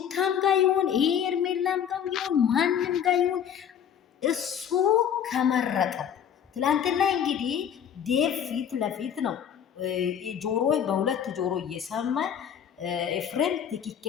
ጋር ይሁን ኤርሜላም ጋር ይሁን ማንም ጋር ይሁን እሱ ከመረጠው። ትላንትና እንግዲህ ዴቭ ፊት ለፊት ነው ጆሮ በሁለት ጆሮ እየሰማ ኤፍሬም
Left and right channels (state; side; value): quieter; right; 8.7 dB